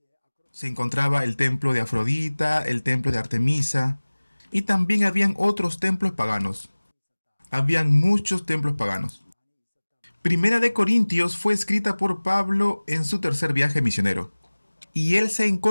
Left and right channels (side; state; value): both; inverted; correlation -1.00